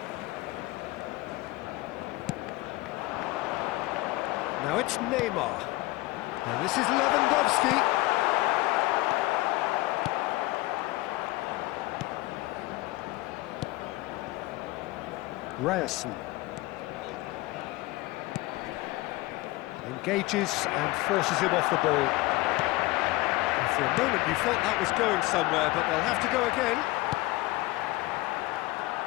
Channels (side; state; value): right; quieter; 20.4 dB